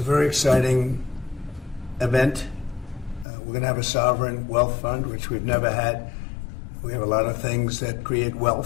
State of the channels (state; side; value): drops out; right; at 3.2 s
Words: very exciting event. We're going to have a sovereign wealth fund, which we've never had. We have a lot of things that create